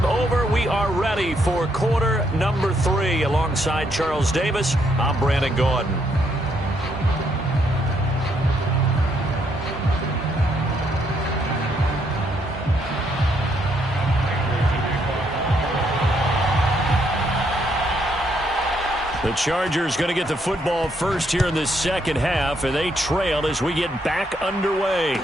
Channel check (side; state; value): both; normal; correlation 0.73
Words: over. We are ready for quarter number 3. Alongside Charles Davis, I'm Brandon Gaudin. The Chargers going to get the football first here in this second half, and they trail as we get back underway.